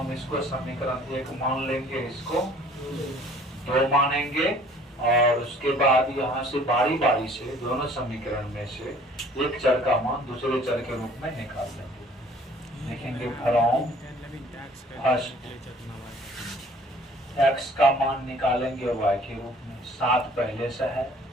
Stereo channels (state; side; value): normal; both; correlation 0.54